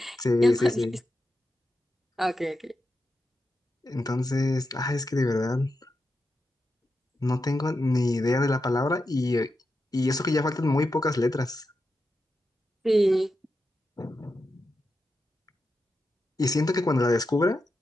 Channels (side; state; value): both; normal; correlation 0.88